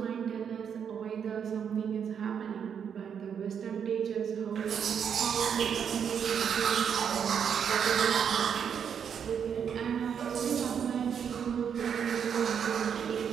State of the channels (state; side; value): quieter; left; 7.6 dB